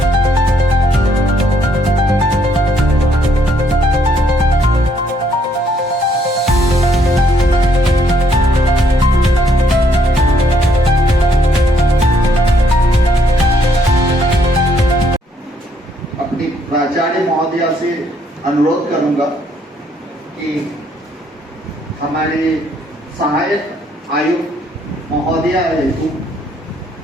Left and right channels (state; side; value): normal; both; correlation 0.69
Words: अपनी प्राचार्य महोदया से अनुरोध करूंगा कि हमारे सहायक आयुक्त महोदया हेतु